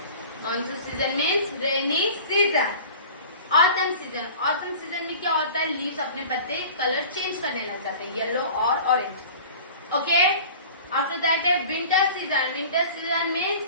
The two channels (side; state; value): both; inverted; correlation -0.41